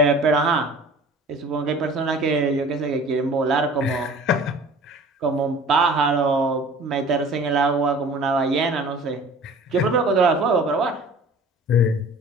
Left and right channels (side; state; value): both; normal; correlation 0.45